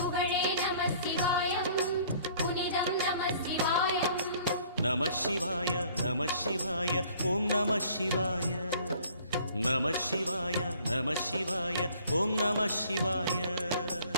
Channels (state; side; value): inverted; both; correlation -0.55